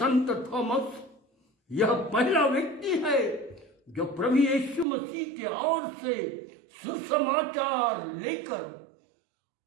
थॉमस यह पहला व्यक्ति है जो प्रभु यीशु मसीह के ओर से सुसमाचार लेकर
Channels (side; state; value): left; drops out; at 4.9 s